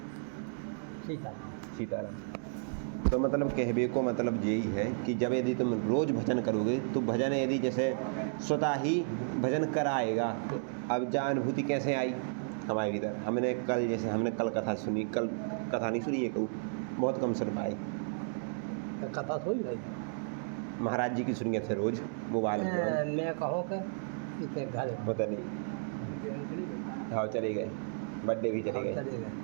सीताराम। तो मतलब कहबे को मतलब यही है कि जब यदि तुम रोज़ भजन करोगे तो भजन यदि जैसे स्वतः ही भजन कराएगा। अब जा अनुभूति कैसे आई हमारे भीतर? हमने कल कथा सुनी, कल कथा नहीं सुनी है, कहूँ बहुत कम सुन पाए। कथा सुन भाई महाराज जी की सुनिए थे रोज़ मोबाइल में। मैं कहूँ कि घर होता नहीं, हाँ चले गए, बर्थडे भी चले गए।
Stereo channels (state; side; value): silent; left; digital silence